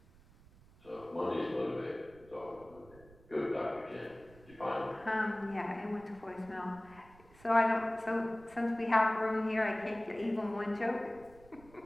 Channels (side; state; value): right; noise; rumble, 24 dB below the sound